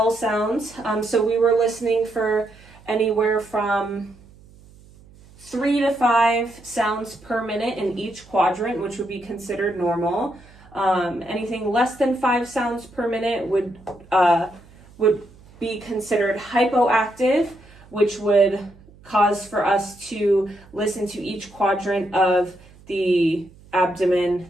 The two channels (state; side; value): noise; right; hum, 24 dB below the sound